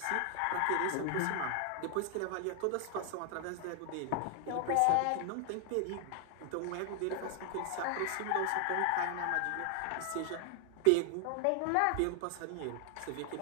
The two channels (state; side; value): different; both; correlation 0.00